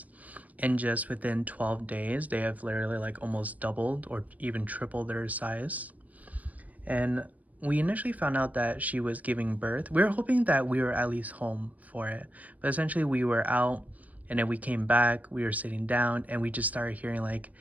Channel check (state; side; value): late; left; 0.073 ms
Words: And just within 12 days, they have literally like almost doubled or even tripled their size. And we initially found out that she was giving birth. We were hoping that we were at least home for it. But essentially, we were out, and then we came back, we were sitting down, and we just started hearing like